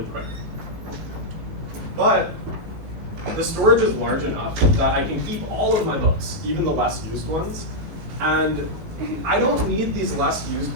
quick. But the storage is large enough that I can keep all of my books, even the less used ones. And I don't need these less used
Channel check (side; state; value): left; late; 19 ms